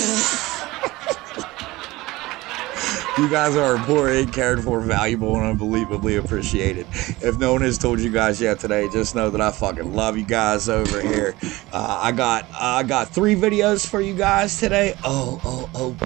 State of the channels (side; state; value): left; quieter; 19.8 dB